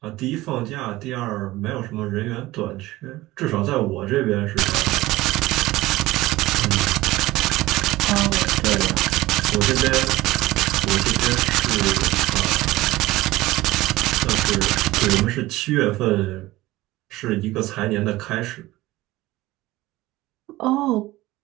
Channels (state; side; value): quieter; left; 18.1 dB